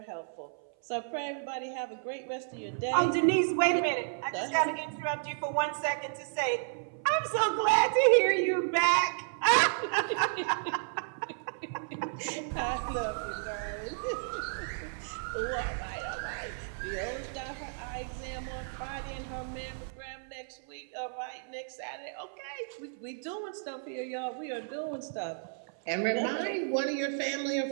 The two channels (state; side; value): silent; left; 56 dB below the other